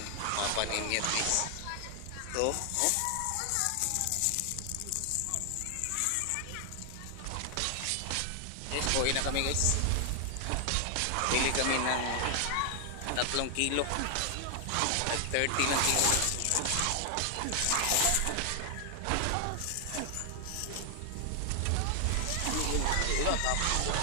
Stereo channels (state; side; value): different; both; correlation 0.00